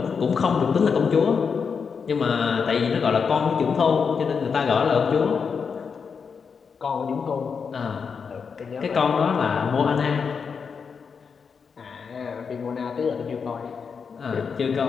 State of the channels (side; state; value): right; quieter; 5.9 dB